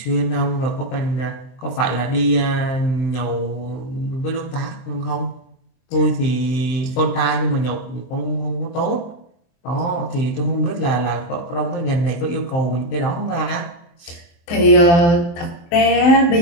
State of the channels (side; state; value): right; late; 23 ms